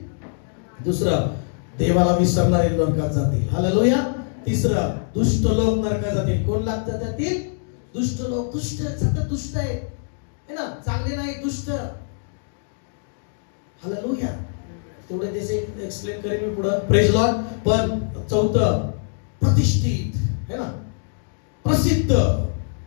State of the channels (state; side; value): silent; right; digital silence